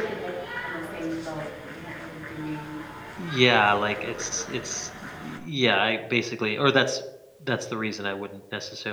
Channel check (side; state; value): both; identical; correlation 1.00